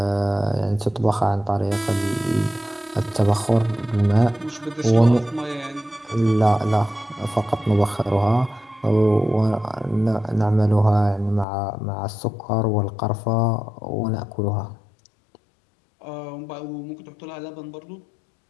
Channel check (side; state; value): right; drops out; at 11.5 s